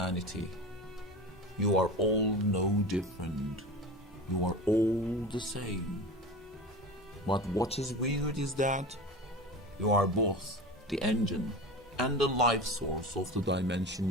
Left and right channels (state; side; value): normal; both; correlation 0.31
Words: You are all no different. You are all the same. But what is weird is that you are both the engine and the life source of the